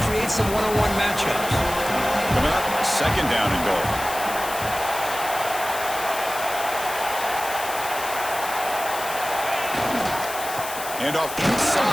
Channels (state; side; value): noise; left; hiss, 9 dB below the sound